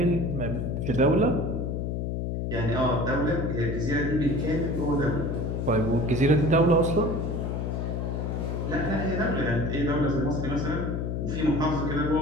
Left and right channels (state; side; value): noise; left; hum, 2 dB below the sound